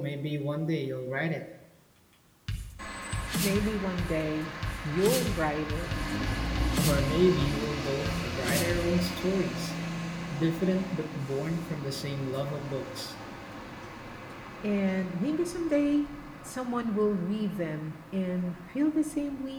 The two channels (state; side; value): identical; both; correlation 1.00